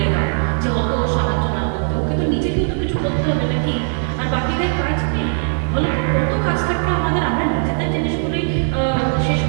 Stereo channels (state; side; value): silent; left; 64 dB below the other